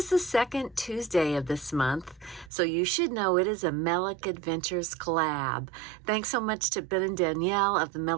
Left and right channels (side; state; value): left; drops out; at 2.5 s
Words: the second Tuesday of this month, so you should know it is a Melick Adventures collab. Thanks so much to Ben and Danielle of the